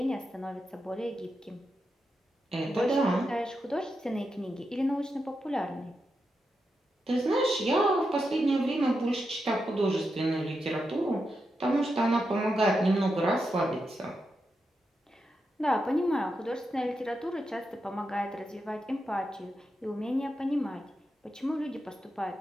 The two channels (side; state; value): both; normal; correlation 0.86